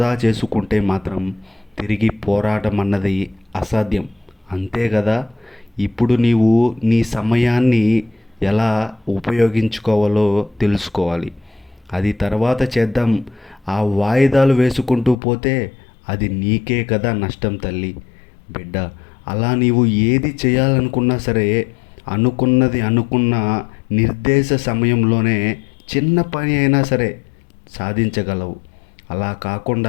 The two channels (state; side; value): drops out; right; at 15.2 s